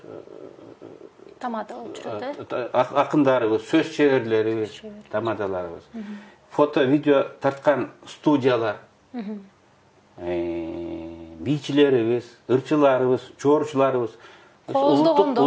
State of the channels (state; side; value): identical; both; correlation 1.00